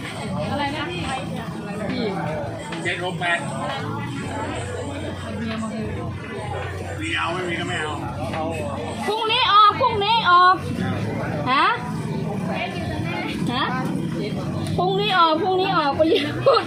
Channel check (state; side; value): identical; both; correlation 1.00